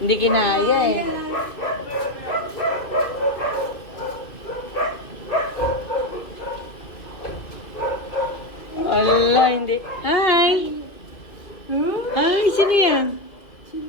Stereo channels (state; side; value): late; right; 2.7 ms